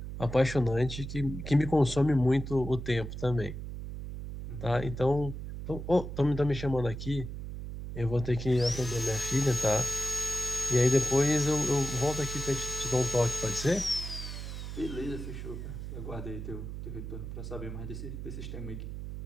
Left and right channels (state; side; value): noise; right; hum, 7 dB below the sound